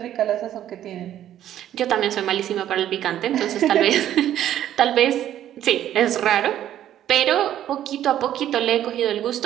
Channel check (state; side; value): quieter; left; 11.5 dB